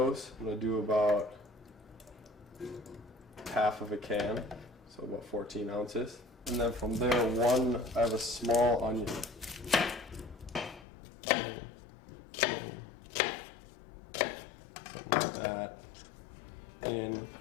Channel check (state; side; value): drops out; right; at 10.9 s